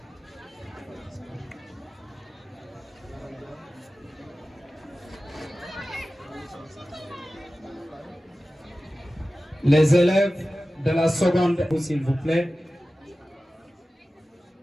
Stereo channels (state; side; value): normal; both; correlation 0.95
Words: les élèves de la seconde, s'il vous plaît.